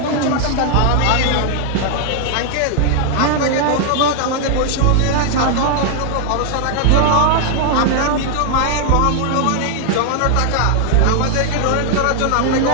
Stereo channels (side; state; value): both; different; correlation 0.00